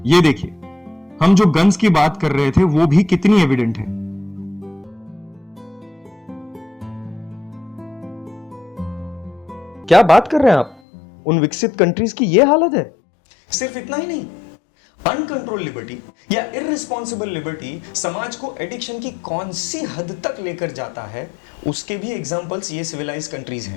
ये देखिए, हम जो गन्स की बात कर रहे थे वो भी कितनी एविडेंट है। क्या बात कर रहे हैं आप? उन विकसित कंट्रीज की ये हालत है। सिर्फ इतना ही नहीं, अनकंट्रोल लिबर्टी या इररिस्पॉन्सिबल लिबर्टी समाज को एडिक्शन की कौन सी हद तक लेकर जाता है, उसके भी एग्जांपल्स ये सिविलाइज्ड कंट्रीज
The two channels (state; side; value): drops out; right; at 10.8 s